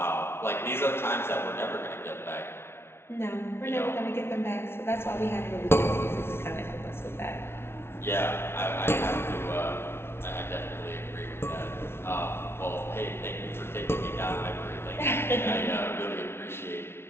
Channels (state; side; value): late; right; 0.12 ms